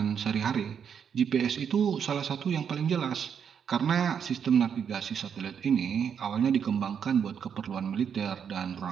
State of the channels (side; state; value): left; quieter; 7.6 dB